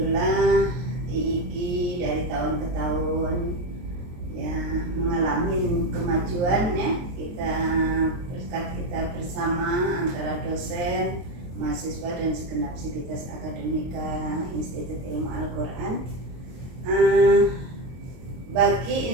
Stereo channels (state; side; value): late; left; 23 ms